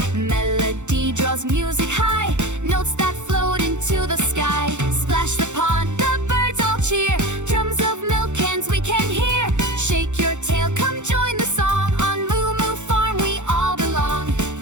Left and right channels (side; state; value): left; late; 0.84 ms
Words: Melody draws music high, notes that float into the sky. Splash the pond, the birds all cheer. Drums of milk cans we can hear. Shake your tail, come join the song. On Moo Moo Farm we all belong.